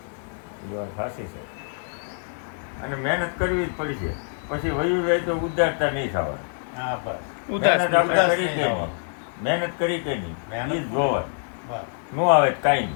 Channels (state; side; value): silent; right; 56 dB below the other